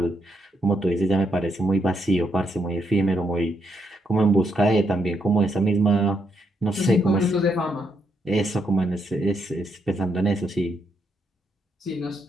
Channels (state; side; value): normal; both; correlation 0.78